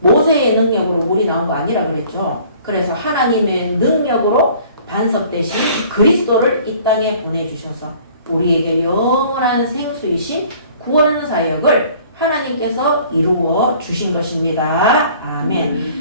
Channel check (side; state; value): both; inverted; correlation -0.53